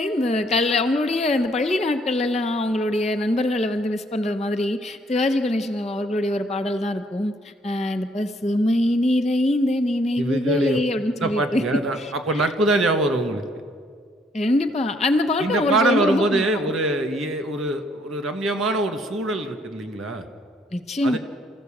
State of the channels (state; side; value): normal; both; correlation 0.67